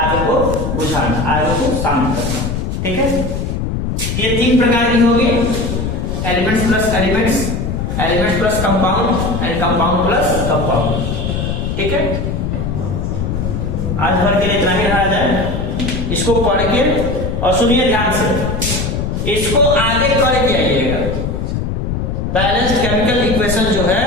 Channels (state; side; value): noise; left; rumble, 2 dB below the sound